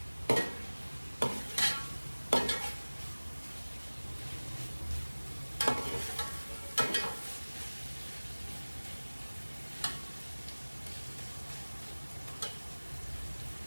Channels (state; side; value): inverted; both; correlation -1.00